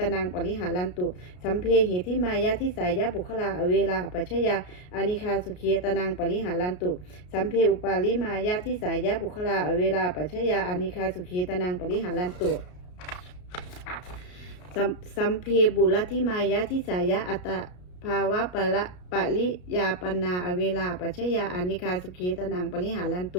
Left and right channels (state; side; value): late; right; 33 ms